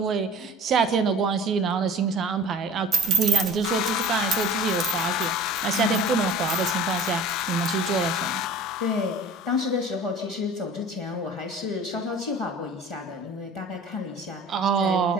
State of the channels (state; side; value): normal; both; correlation 0.43